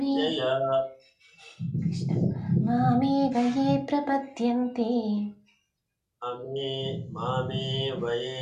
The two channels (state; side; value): identical; both; correlation 1.00